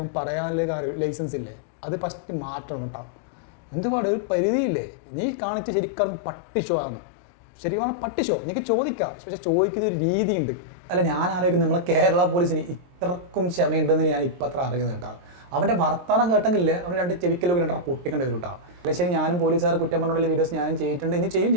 പറയാനുള്ള ലൈസൻസ് ഇല്ലേ? അത് ഫസ്റ്റ് മാറ്റണം കേട്ടോ. എന്തുപാട് ഒരു പരിധിയില്ലേ? നീ കാണിച്ച് ശരിക്കും പട്ടി ഷോ ആണ്. ശരിക്കും പട്ടി ഷോ. എനിക്ക് ചോദിക്കാം, പക്ഷെ ചോദിക്കുന്ന ഒരു രീതിയുണ്ട്. അല്ല, ഞാൻ ആലോചിക്കുന്നത് നമ്മളെ കേരള പോലീസിന് ഇത്രക്കും ക്ഷമയുണ്ടെന്ന് ഞാൻ ഇപ്പം അത്ര അറിയുന്നത് കേട്ടോ. അവൻ്റെ വർത്തമാനം കേട്ടെങ്കിലേ അവൻ രണ്ട് ചെവിക്കലൊക്കെ രണ്ടര പൊട്ടിക്കേണ്ടി വരും കേട്ടോ. അല്ലെ ശരി, ഞാനും പോലീസുകാർ കുറ്റം പറഞ്ഞുള്ള വീഡിയോസ് ഞാനും ചെയ്തിട്ടുണ്ട്, ഇനി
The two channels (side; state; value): left; late; 23 ms